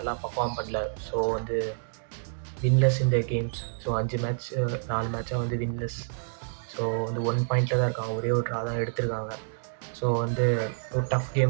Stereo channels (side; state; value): left; silent; digital silence